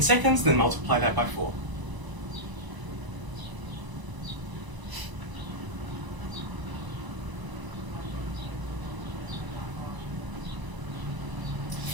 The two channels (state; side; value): late; left; 1.0 ms